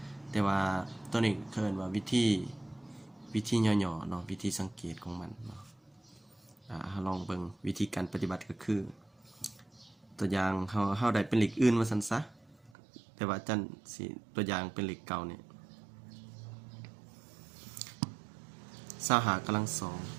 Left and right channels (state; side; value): drops out; left; at 12.7 s